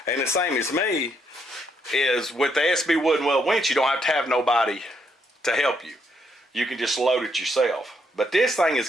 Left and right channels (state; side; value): normal; both; correlation 0.74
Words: the same as me, is with the SB wooden weld winch, you don't have to have nobody to help you. You can just load it yourself. But this thing has